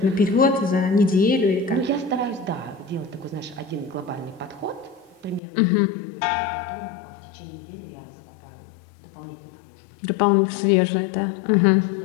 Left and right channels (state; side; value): drops out; right; at 5.4 s